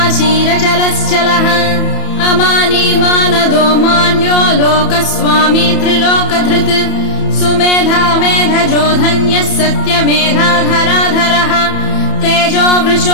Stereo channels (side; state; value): right; late; 31 ms